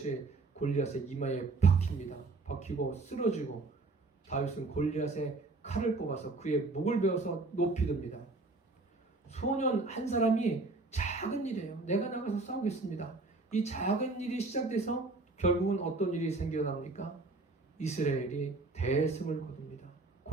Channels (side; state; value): left; quieter; 3.4 dB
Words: 골리앗의 이마에 박힙니다. 박히고 쓰러지고 다윗은 골리앗의 칼을 뽑아서 그의 목을 베어서 높이 듭니다. 소년 한 사람이 작은 일이에요. 내가 나가서 싸우겠습니다. 이 작은 일이 시작돼서 결국은 어떤 일이 생겨납니까? 이스라엘이 대승을 거둡니다.